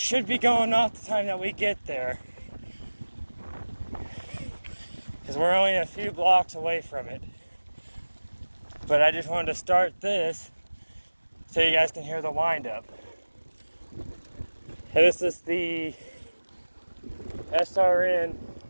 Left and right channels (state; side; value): inverted; both; correlation -1.00